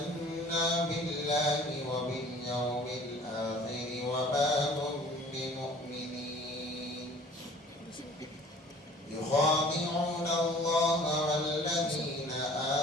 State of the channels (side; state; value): both; normal; correlation 0.49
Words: بالله وباليوم الآخر وما هم بمؤمنين يخادعون الله والذين